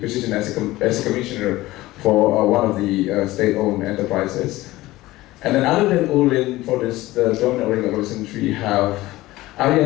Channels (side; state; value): right; quieter; 17.8 dB